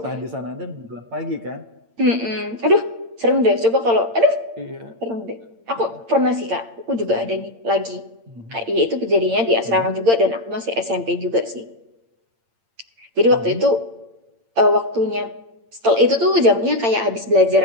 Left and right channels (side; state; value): left; late; 8.8 ms